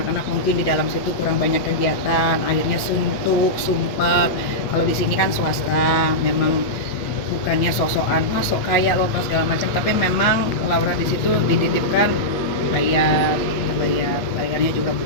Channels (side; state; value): right; late; 8.5 ms